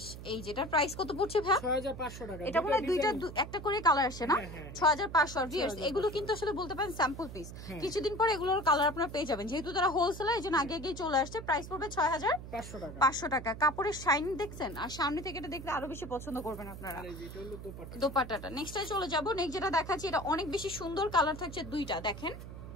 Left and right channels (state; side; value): noise; right; hum, 11 dB below the sound